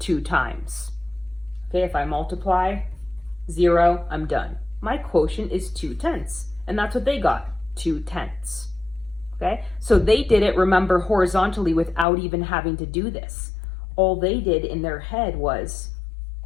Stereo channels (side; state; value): right; drops out; at 12.1 s